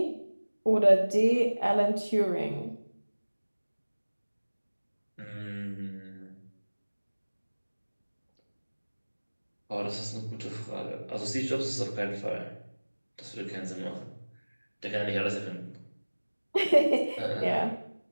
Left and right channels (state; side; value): inverted; both; correlation -1.00